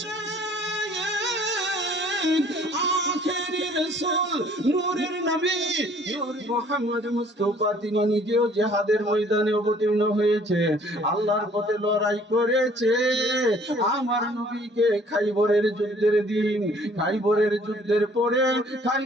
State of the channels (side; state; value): both; normal; correlation 0.57